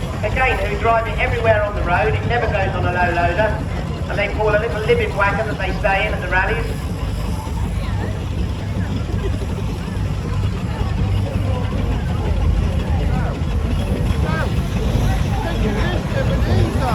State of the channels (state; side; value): identical; both; correlation 1.00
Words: again, who drive it everywhere on the road. It never goes on a low loader, and they call a little living wagon that they stay in at the rallies.